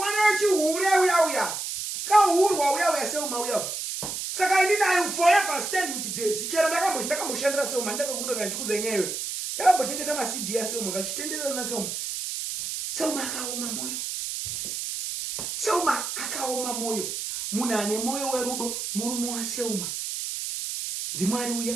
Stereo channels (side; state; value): right; noise; hiss, 4 dB below the sound